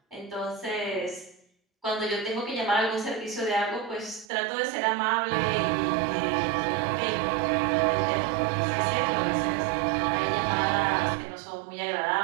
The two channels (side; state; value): left; drops out; at 4.2 s